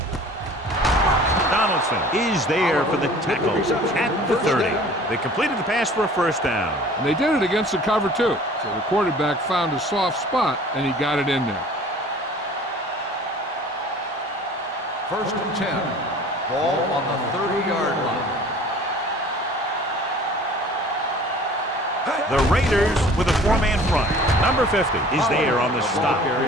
Donaldson is there for the tackle at the 30. They completed the pass for a first down. And they did it against the cover, too. So the quarterback found a soft spot, and he got it in there. First and 10. Ball on the 30-yard line. The Raiders with a four-man front. Number 50 is there on the stop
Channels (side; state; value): both; normal; correlation 0.47